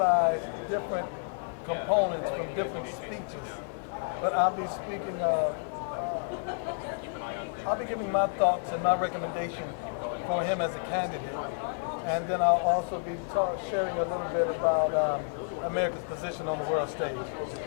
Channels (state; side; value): silent; right; 58 dB below the other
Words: different components from different speeches. But I'll be speaking of, I'll be giving my thoughts and my recommendation for him as a candidate. And then I'll also be sharing a little bit about America's position on the world stage.